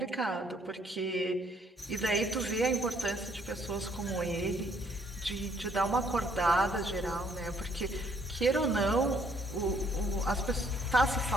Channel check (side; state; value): both; normal; correlation 0.66